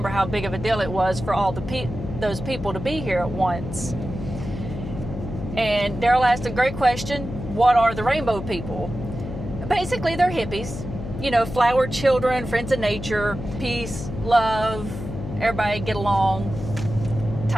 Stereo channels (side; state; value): left; noise; hum, 7 dB below the sound